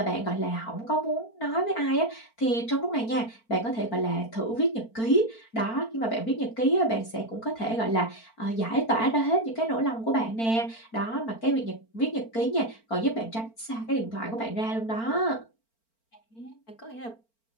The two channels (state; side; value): late; right; 4.4 ms